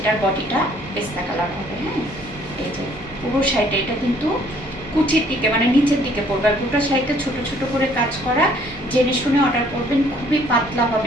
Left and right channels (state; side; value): normal; both; correlation 0.61